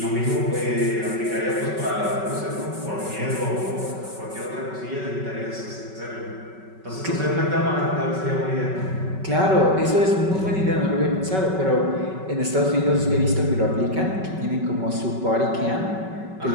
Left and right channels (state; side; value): late; left; 5.3 ms